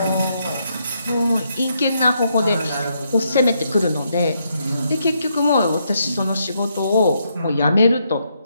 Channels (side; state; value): both; inverted; correlation -0.77